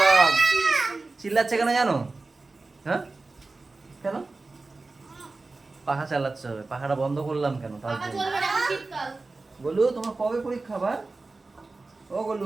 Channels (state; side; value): quieter; left; 3.5 dB